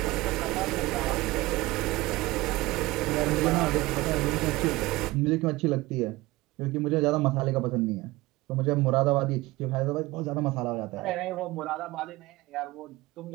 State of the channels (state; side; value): quieter; left; 20.0 dB